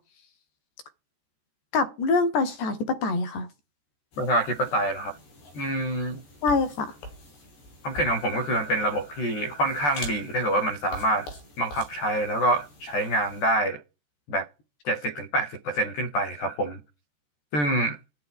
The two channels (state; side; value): late; right; 14 ms